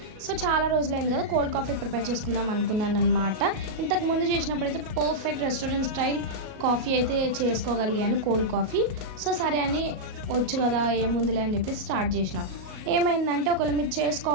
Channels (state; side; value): late; left; 37 ms